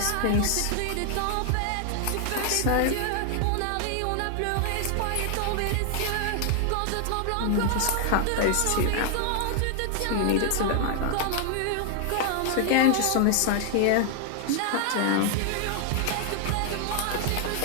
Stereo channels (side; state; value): both; different; correlation 0.00